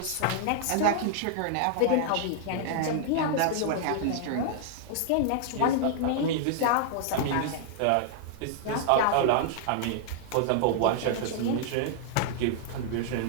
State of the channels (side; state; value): both; different; correlation -0.01